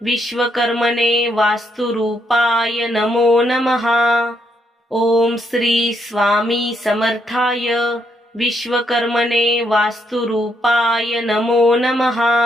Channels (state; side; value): normal; both; correlation 0.76